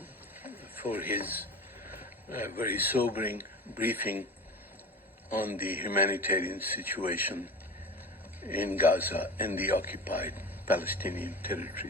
for his very sobering briefing on the humanitarian situation in Gaza and the occupied Palestinian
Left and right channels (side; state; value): both; normal; correlation 0.33